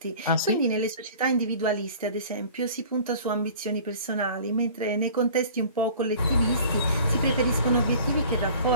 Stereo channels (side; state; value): both; inverted; correlation -0.46